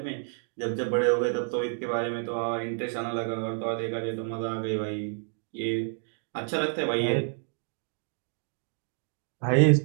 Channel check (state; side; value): silent; left; 58 dB below the other